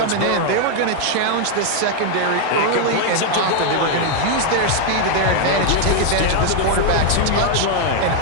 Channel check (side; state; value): both; different; correlation 0.00